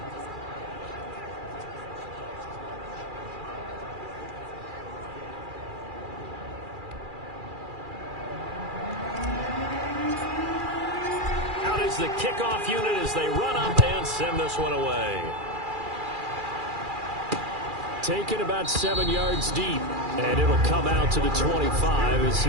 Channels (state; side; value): late; left; 2.4 ms